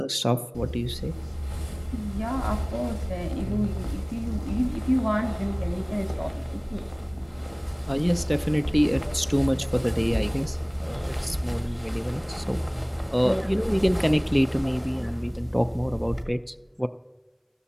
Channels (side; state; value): both; identical; correlation 1.00